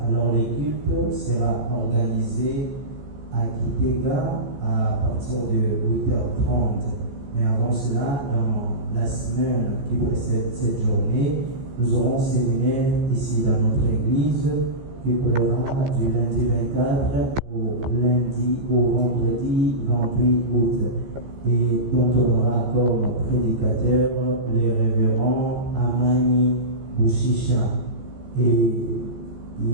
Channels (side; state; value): left; late; 15 ms